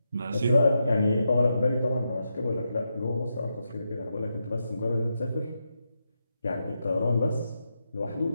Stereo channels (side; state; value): both; inverted; correlation -0.86